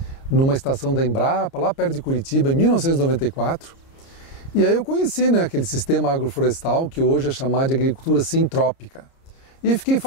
numa estação da Embrapa, lá perto de Curitiba, em 1994, e aí eu conheci aquele sistema agroflorestal que hoje é chamado de agricultura sintrópica, e fiquei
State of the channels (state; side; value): late; right; 30 ms